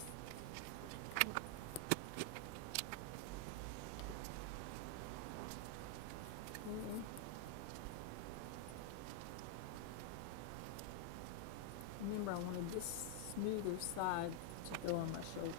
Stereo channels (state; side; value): different; both; correlation 0.00